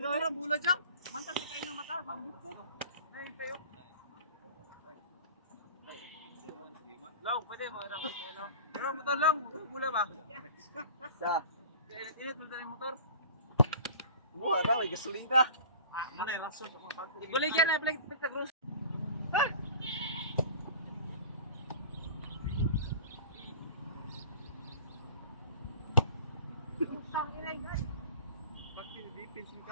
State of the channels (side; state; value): both; inverted; correlation -0.42